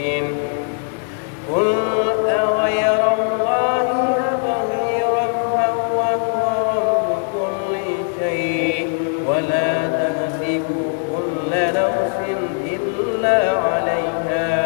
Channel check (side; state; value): right; silent; digital silence